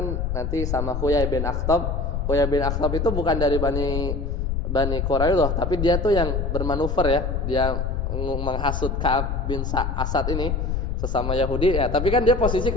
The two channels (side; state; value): left; noise; rumble, 1 dB below the sound